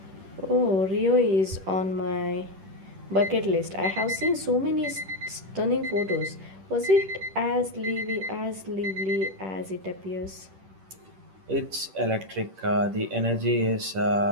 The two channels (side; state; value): left; late; 10 ms